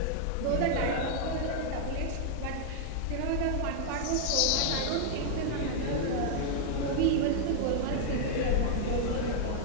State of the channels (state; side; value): different; both; correlation -0.01